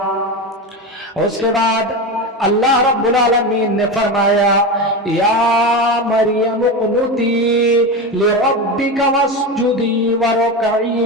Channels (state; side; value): normal; both; correlation 0.20